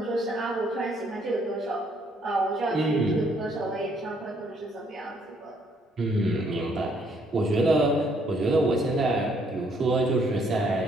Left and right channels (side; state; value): both; normal; correlation 0.68